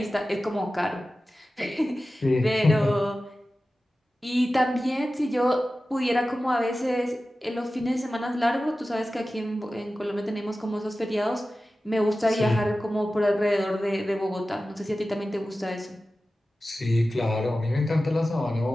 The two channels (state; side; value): normal; both; correlation 0.95